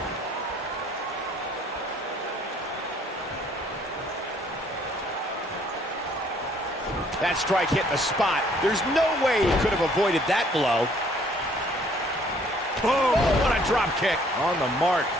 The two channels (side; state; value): both; normal; correlation 0.61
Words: That strike hit the spot. There's no way he could have avoided that blow. Boom! Oh, what a drop kick. On the mark.